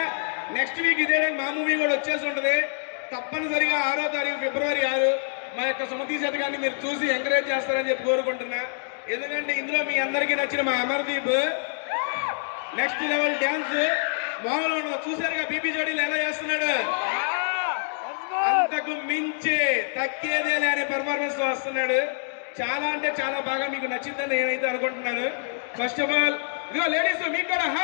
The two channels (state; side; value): silent; right; digital silence